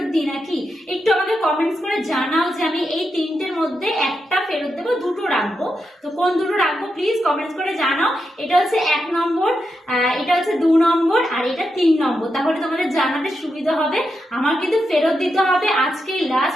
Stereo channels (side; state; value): both; normal; correlation 0.86